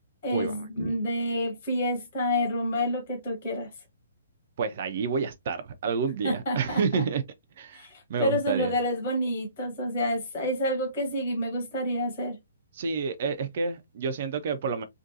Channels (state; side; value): inverted; both; correlation -0.55